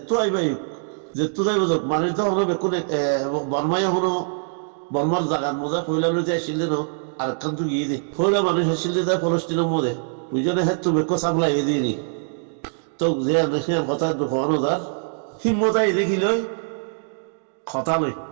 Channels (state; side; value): silent; left; digital silence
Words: আইবাই যেতো যাইব যাক মানে তো হলো বেকুন বর্মাই হলো বর্মার জাগার মজা ফইলা লইতে আসিলে ন আর একখান তো গিয়ে দে ফইলা মানুষ আসিলে তাই ফলস্তিনের মধ্যে বুঝলে হ্যাঁ তো বেকো সাপ্লাই এ দিয়ে তো যে সে কথা দুঃখানো যার হিম্মত আই দেখি লই কথা লই